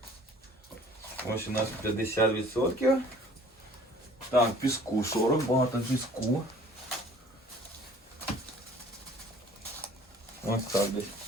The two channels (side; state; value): both; normal; correlation 0.52